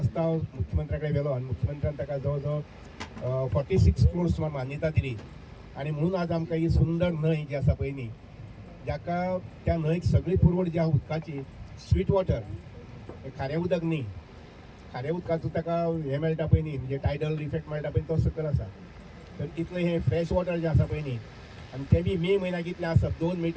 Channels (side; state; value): both; identical; correlation 1.00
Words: मुख्यमंत्र्या कडेन व्हेलो आनी मुख्यमंत्र्यान ताका जवळ जवळ 46 करोड सुमार मान्यता दिली आनी म्हणून आज आमकां ही सुंदर न्हंय जी आसा पळय न्ही जाका त्या न्हंयक सगळी पुरवण जी आहा उदकाची स्वीट वॉटर खारें उदक न्ही खारें उदकाचो ताका हें मेळटा पळय न्ही म्हणजे टायडल इफेक्ट मेळटा पळय तो सकयल आसा तर इतलें हें फ्रेश वॉटर जें आसा पळय न्ही आनी तें बी मे म्हयन्याक इतलें आसत 2